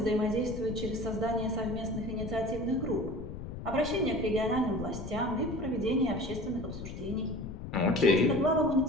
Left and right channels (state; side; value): noise; left; rumble, 9 dB below the sound